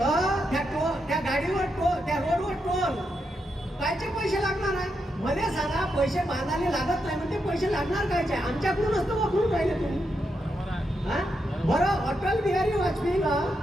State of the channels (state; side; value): normal; both; correlation 0.83